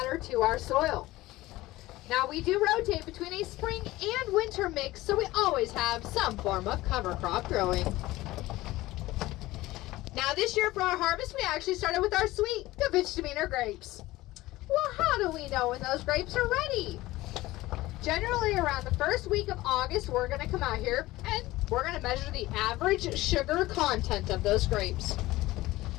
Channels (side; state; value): right; quieter; 18.0 dB